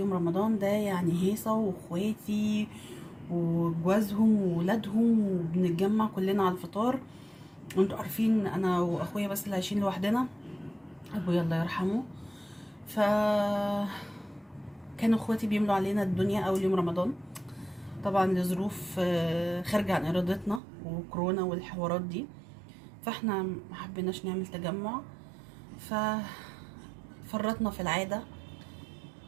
رمضان ده يعني هيصه واخواتي وجوازهم وولادهم وبنتجمع كلنا على الفطار. وانتوا عارفين انا واخويا بس اللي عايشين لوحدنا، ابويا الله يرحمه. ف كانوا اخواتي بيملوا علينا الدنيا اول يوم رمضان، طبعا لظروف خارجه عن ارادتنا وكورونا والحوارات دي. فاحنا ما حبيناش نعمل تجمع، ففرطنا في العاده.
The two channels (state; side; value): drops out; left; at 20.6 s